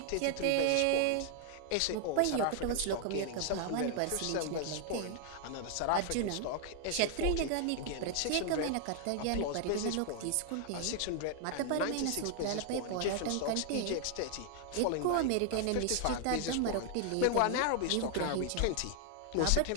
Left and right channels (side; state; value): both; different; correlation 0.00